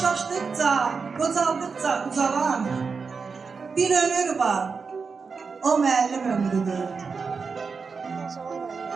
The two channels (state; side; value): quieter; left; 5.1 dB